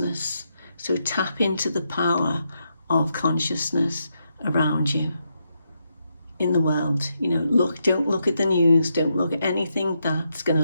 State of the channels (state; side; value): inverted; both; correlation -0.82